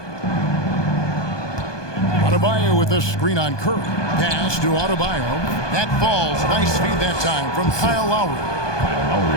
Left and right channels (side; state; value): right; late; 1.2 ms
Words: Adebayo with the screen on Curry. Pass to Adebayo. That falls. Nice feed that time from Kyle Lowry.